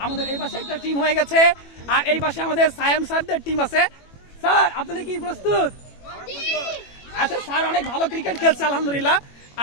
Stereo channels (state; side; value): late; right; 21 ms